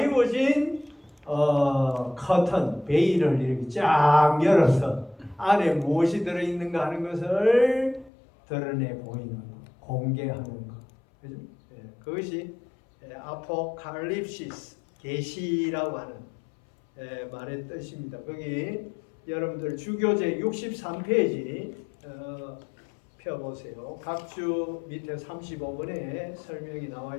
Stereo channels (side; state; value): right; drops out; at 8.1 s